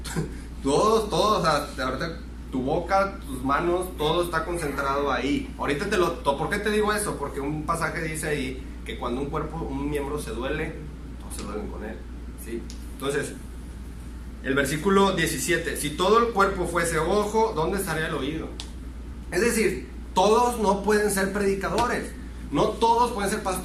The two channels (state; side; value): identical; both; correlation 1.00